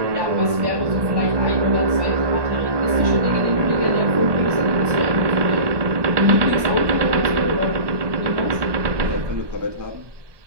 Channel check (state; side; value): late; left; 1.2 ms